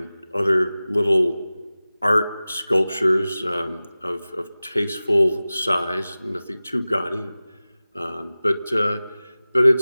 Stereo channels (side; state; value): both; inverted; correlation -0.97